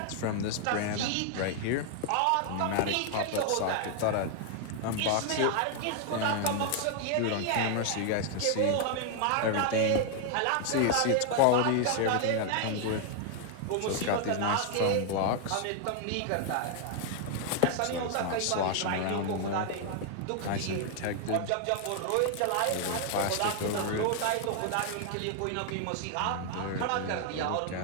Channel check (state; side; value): different; both; correlation 0.00